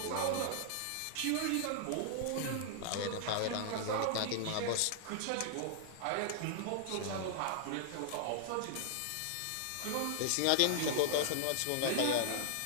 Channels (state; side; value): different; both; correlation -0.01